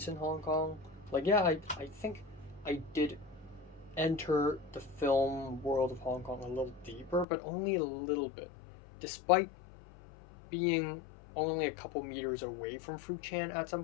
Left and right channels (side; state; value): right; drops out; at 7.2 s